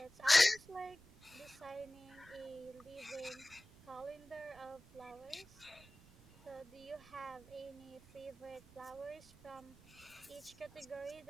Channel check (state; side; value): noise; right; rumble, 23 dB below the sound